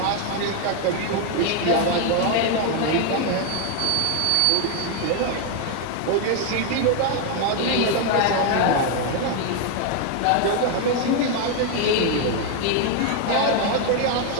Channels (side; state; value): both; different; correlation 0.01